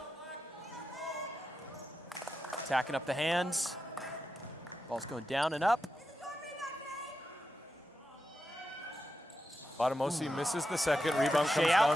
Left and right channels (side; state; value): both; normal; correlation 0.88